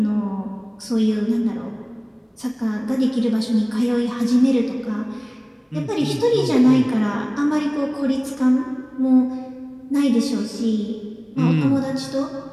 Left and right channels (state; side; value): identical; both; correlation 1.00